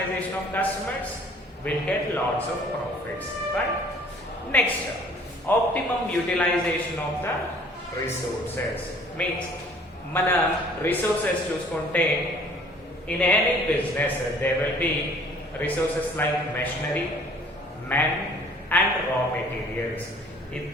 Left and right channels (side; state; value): both; normal; correlation 0.54